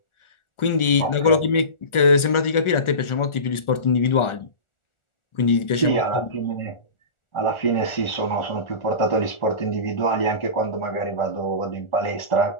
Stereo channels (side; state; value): right; late; 1.4 ms